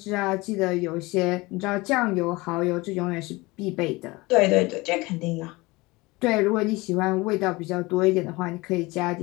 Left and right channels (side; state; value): right; quieter; 22.6 dB